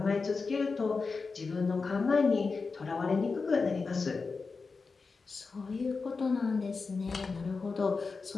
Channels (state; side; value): quieter; right; 4.5 dB